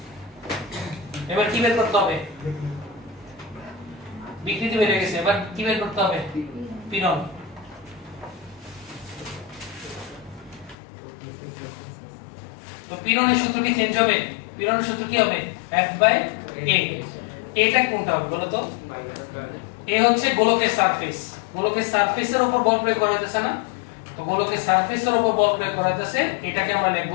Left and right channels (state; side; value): drops out; right; at 10.8 s